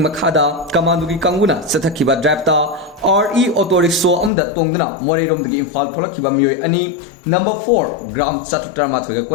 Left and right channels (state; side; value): drops out; right; at 4.3 s